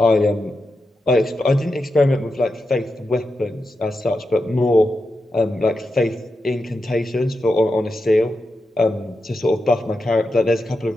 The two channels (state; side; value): normal; both; correlation 0.88